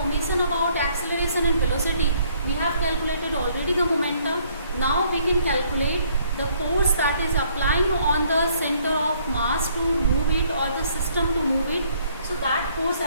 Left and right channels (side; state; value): both; inverted; correlation -0.65